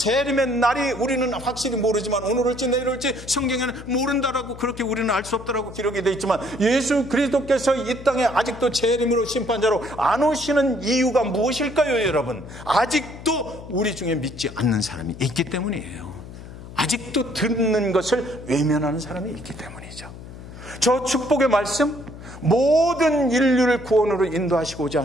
날이 우리는 확실히 모르지만 오늘 올지 내일 올지 성경에는 모른다라고 그렇게 우리는 알 수 없다라고 기록이 되어 있지만 예수 그리스도께서 이 땅에 아직도 재림으로 심판자로 안 오시는 이유가 무엇일까요, 여러분? 아직도 우리 중에 믿지 않는 사람이 있기 때문이에요. 아직도 듣는 것을 외면하는 사람이 있기 때문이죠. 저 축복의 말씀, 모든 인류를 구원으로 인도하시고자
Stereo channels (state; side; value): noise; left; hum, 15 dB below the sound